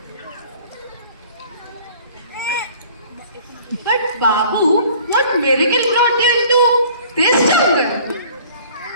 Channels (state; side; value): inverted; both; correlation -0.51